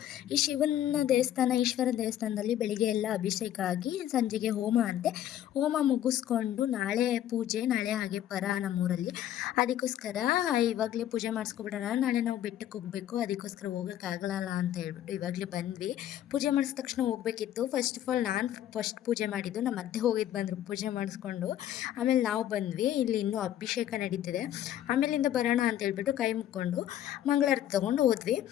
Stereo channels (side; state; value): right; quieter; 11.8 dB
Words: ಈ ಶಿವನ ದೇವಸ್ಥಾನ, ಈಶ್ವರ ದೇವಸ್ಥಾನದಲ್ಲಿ ಬೆಳಿಗ್ಗೆ ಎಲ್ಲ ಅಭಿಷೇಕ ಆಗಿ ಸಂಜೆಗೆ ಹೋಮ ಅಂತೆ. ಹೋಮ ಮುಗಿಸ್ಕೊಂಡು ನಾಳೆ ಪೂಜೆ, ನಾಳೆ ಹಾಗೆ ಪರ ನಮ್ಮೂರಲ್ಲಿ. ಅದಕ್ಕೋಸ್ಕರ ಇವಾಗಲೇ ಪೂಜೆ ಮಾಡಿಸ್ಕೊಬಿಡೋಣ, ನಾಳೆ ನಾವು ಬೆಟ್ಟಕ್ಕೆ ಹೋಗಬೇಕು, ಅದಕ್ಕೋಸ್ಕರ ಹೋಗೋಕ್ಕಾಗಲ್ಲ ಅಂತ ಹೇಳ್ಬಿಟ್ಟು ಇವಾಗಲೇ ಬಂದ್ವಿ. ಪೂಜೆ ಮಾಡಿದ ತಕ್ಷಣ ಹೋಗಬೇಕಿತ್ತು. ಫಸ್ಟ್ ಆಫ್ ಆಲ್ ನಾನು ಫಸ್ಟ್ ಪೂಜೆ ಮಾಡಿದ್ದು, ನಮ್ಮ ಅತ್ತೆ ಹೋಗಿದ್ದು ಬಂದರು ಪೂಜೆ ಮಾಡಿಸ್ಕೊಂಡು. ಆಮೇಲೆ ನಾವು ಬಂದ್ವಿ. ಇಲ್ಲಿ ಇನ್ನೂ ಅಭಿಷೇಕ ನಡೀತಿದೆ. ಆಮೇಲಿಂದ ಬರೋಣ ಅಂತ ಹೇಳ್ಬಿಟ್ಟು ಕೈ ಮುಕ್ಕೊಂಡು ಮಂಗಳಾರತಿ ತಗೊಂಡು ಹೋದ್ವಿ.